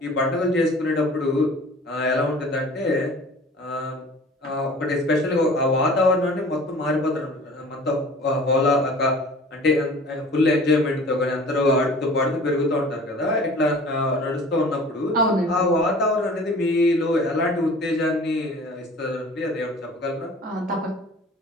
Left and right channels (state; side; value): normal; both; correlation 0.45